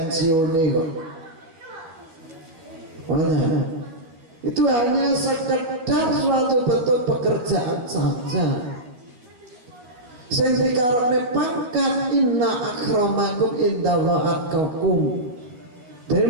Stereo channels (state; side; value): late; left; 12 ms